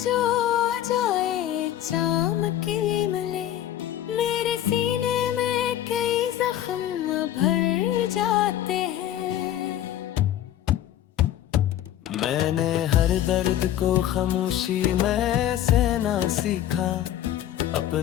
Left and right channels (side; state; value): right; quieter; 12.0 dB